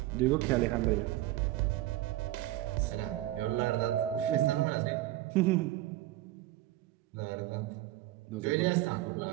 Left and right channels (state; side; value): quieter; left; 15.7 dB